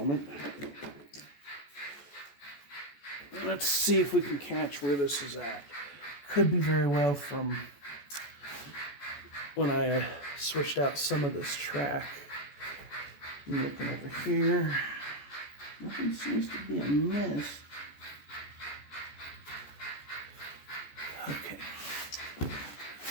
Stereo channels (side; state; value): right; late; 14 ms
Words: Let's see if we can catch where this is at. Could be very well from when I switched out some of this track. I'm looking over here. Nothing seems to be amiss. Okay.